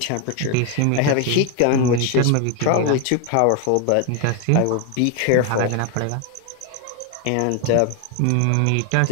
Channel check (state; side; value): different; both; correlation 0.01